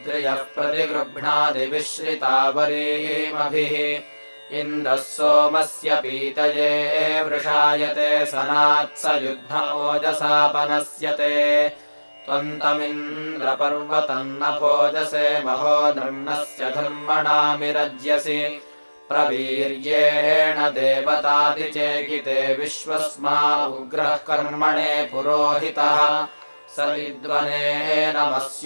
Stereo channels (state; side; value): inverted; both; correlation -1.00